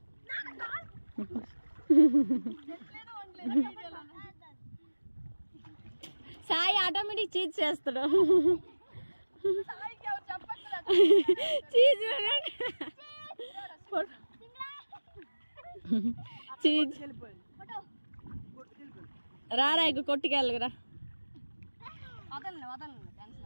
సాయి ఆటోమేటిక్ చీజ్ చేస్తాడు. చీజ్ చీజ్ రారా ఇక కొట్టుకెళ్ళరా.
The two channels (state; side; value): inverted; both; correlation -1.00